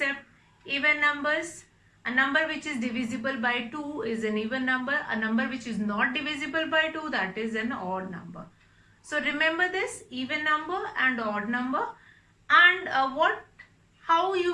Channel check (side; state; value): both; identical; correlation 1.00